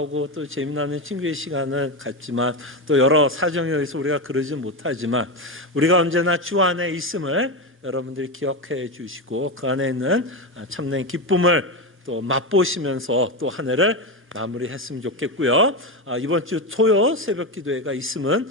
또 재미나는 친구의 시간을 갖지만 또 여러 사정에 의해서 우리가 그러지 못하지만 우리가 언제나 주 안에 있음을 여러분들이 기억해 주시고 그 안에 있는 참된 기쁨을 또 맛보시면서 또 한 해를 마무리했으면 좋겠고요. 이번 주 토요 새벽 기도회가 있음은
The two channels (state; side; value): normal; both; correlation 0.14